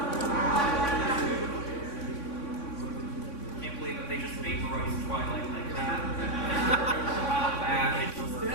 Can't believe that they just vaporized Twilight like that. And she's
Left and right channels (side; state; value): right; late; 3.6 ms